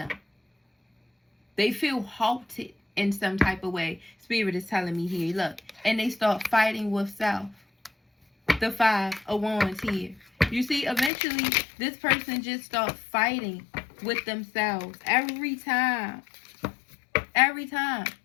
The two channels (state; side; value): drops out; right; at 11.1 s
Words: They feel halted in some type of way. Spirit is telling me here, look. And they start fighting with self. The 5 of Wands here. You see, eventually, this person just starts fighting with themselves. Every time. Every time.